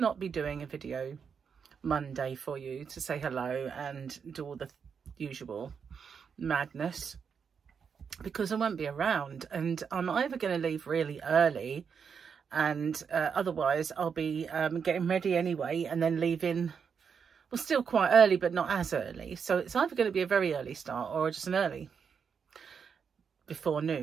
be doing a video Monday for you to say hello and do all the usual madness, because I won't be around, and I'm either going to leave really early, and otherwise I'll be getting ready anyway and then leaving, well, still quite early but not as early. So it's either going to be a very early start or just an early before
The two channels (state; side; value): quieter; left; 6.5 dB